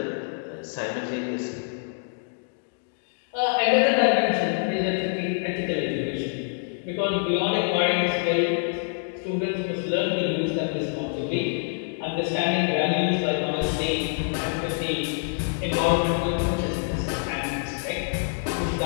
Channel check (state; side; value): silent; right; digital silence